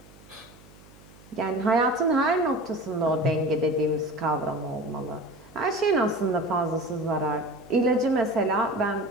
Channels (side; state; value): right; noise; hum, 24 dB below the sound